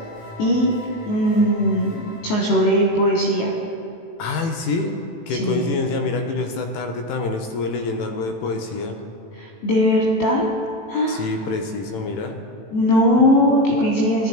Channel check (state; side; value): late; right; 18 ms